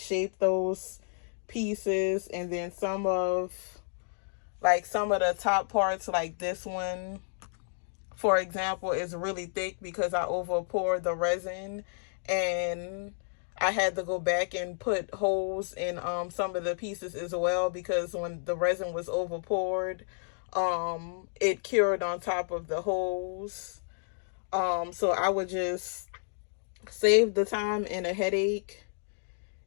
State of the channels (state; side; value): silent; right; digital silence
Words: those pieces. And then some of the top parts, like this one for example, is really thick because I over poured the resin, and I had to go back and put holes in some of the pieces as well, because when the resin was over poured, it cured on top of the holes. So I would just save the time and a headache